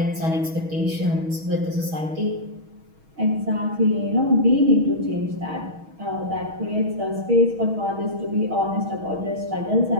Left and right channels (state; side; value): late; left; 6.3 ms